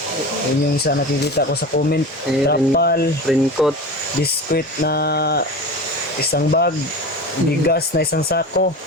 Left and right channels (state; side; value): normal; both; correlation 0.31